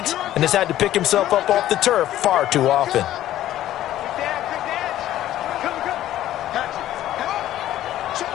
and has had to pick himself up off the turf far too often.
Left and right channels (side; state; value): right; quieter; 13.2 dB